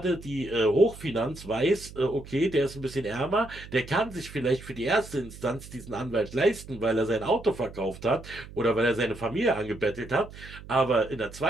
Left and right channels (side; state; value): right; noise; hum, 16 dB below the sound